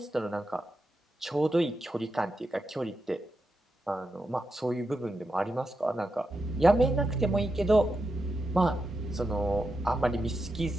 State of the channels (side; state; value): both; normal; correlation 0.87